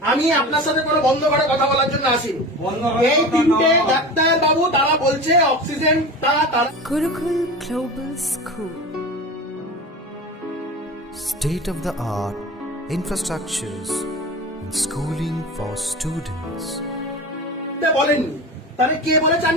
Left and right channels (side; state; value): both; normal; correlation 0.31